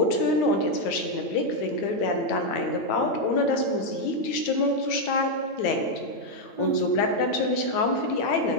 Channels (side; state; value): right; late; 8.9 ms